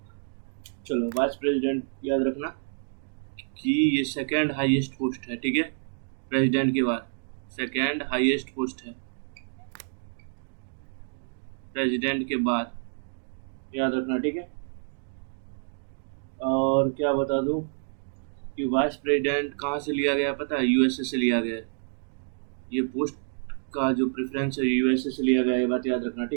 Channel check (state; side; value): silent; left; digital silence